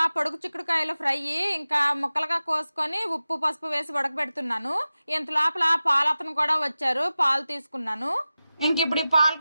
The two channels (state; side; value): inverted; both; correlation -0.95